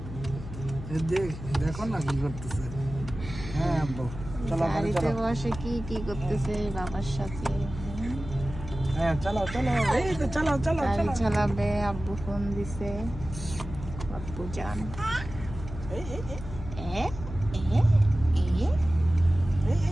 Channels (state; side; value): noise; left; hum, 11 dB below the sound